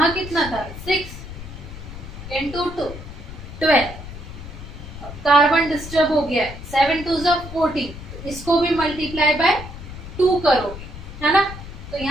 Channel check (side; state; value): left; noise; rumble, 12 dB below the sound